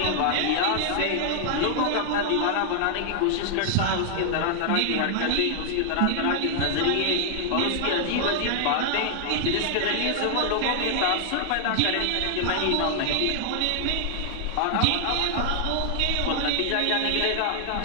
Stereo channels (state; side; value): different; both; correlation 0.00